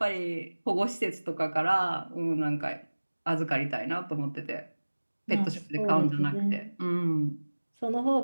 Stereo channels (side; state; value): both; inverted; correlation -1.00